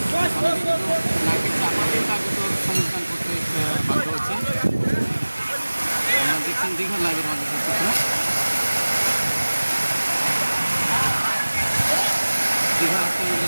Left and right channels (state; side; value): inverted; both; correlation -1.00